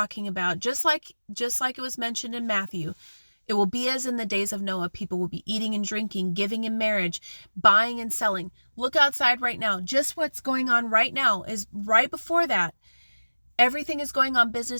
about, just like it was mentioned in Matthew, it will be as in the days of Noah. People will be eating and drinking, giving in marriage, buying and selling. Look outside right now. Just what's going on right now is right before that. Everything is going on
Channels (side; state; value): both; inverted; correlation -1.00